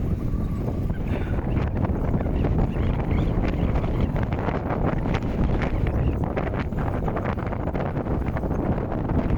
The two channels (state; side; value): identical; both; correlation 1.00